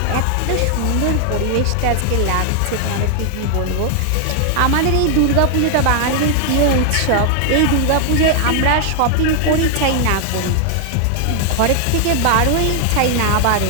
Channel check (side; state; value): both; different; correlation 0.00